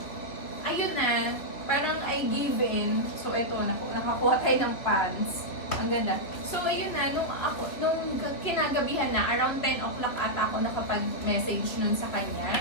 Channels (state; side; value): late; right; 3.2 ms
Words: I ayun na, parang I give in. So, ito, nakakuha tayo ng pants. Ang ganda. So, ayun na, nung kinagabihan na, around 10 o'clock ata ako nakapag-message nun sa